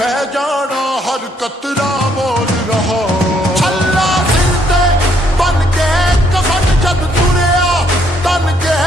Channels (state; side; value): normal; both; correlation 0.69